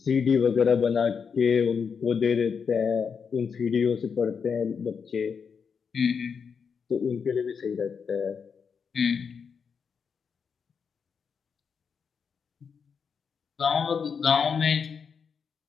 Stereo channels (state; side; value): quieter; right; 6.2 dB